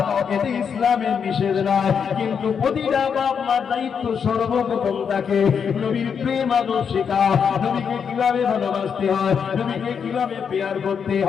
এতে ইসলামের নিষেধ নাই। কিন্তু প্রতিটা বাপ মার দায়িত্ব সর্বপ্রথম তাকে নবীর প্রেম আদর শেখাও, নবীকে কিভাবে ভালোবাসতে হয়, নবীকে কিভাবে পেয়ার করতে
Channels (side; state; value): right; quieter; 6.8 dB